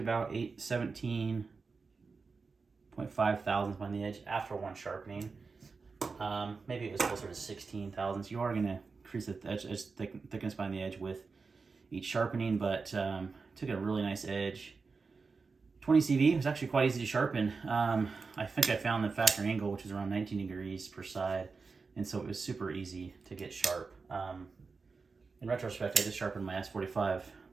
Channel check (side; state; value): left; quieter; 4.6 dB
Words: 17.5 thousandths on the edge after one sharpening. Maybe it was closer to 16 thousandths. You are going to increase the edge, thickness behind the edge with each sharpening, but took a really nice edge. 20 CV was actually quite easy to sharpen. I think I found the factory angle, which is around 19 degrees per side, and so it was super easy to get sharp. In retrospect, I just sharpened my S45